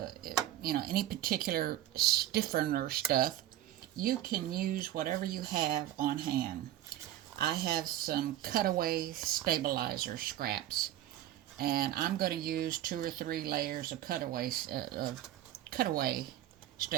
any particular stiffener stuff. You can use whatever you have on hand. I have some cutaway stabilizer scraps, and I'm going to use 2 or 3 layers of cutaway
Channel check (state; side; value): quieter; left; 12.9 dB